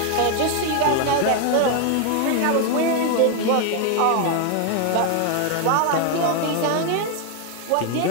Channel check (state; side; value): different; both; correlation 0.00